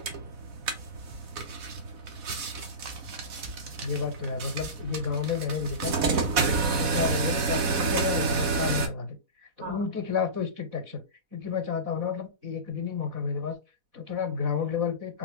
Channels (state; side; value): late; left; 4.1 ms